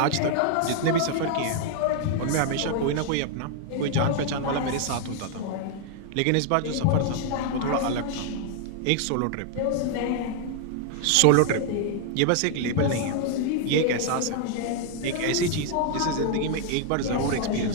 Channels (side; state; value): both; different; correlation 0.00